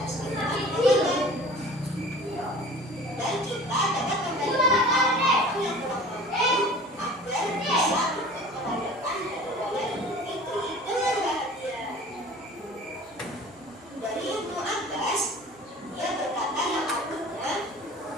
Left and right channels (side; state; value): both; normal; correlation 0.43